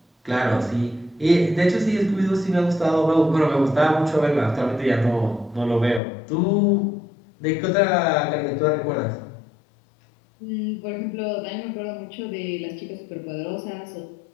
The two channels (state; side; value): drops out; right; at 6.0 s